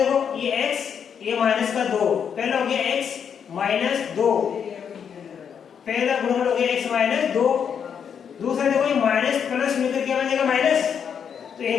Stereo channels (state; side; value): quieter; right; 7.5 dB